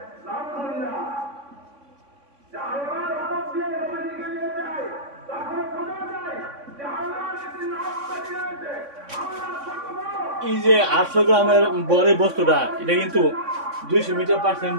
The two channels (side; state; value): left; late; 3.6 ms